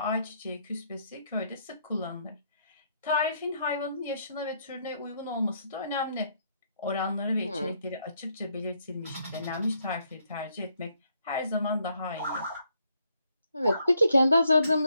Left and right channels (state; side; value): inverted; both; correlation -0.73